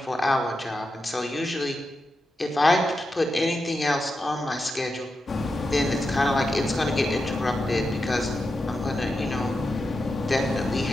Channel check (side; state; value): both; normal; correlation 0.89